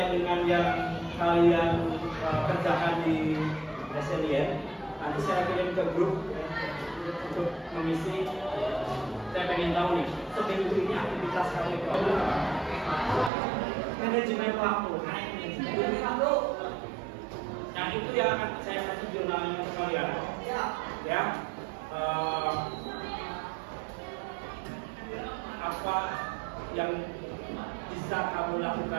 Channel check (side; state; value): left; drops out; at 13.3 s